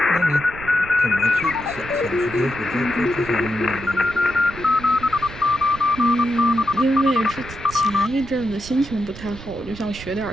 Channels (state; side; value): noise; right; rumble, 14 dB below the sound